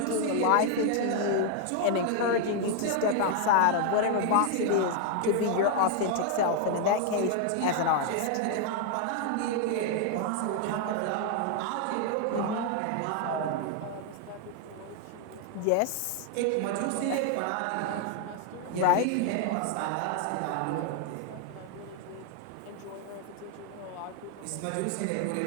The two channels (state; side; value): different; both; correlation 0.00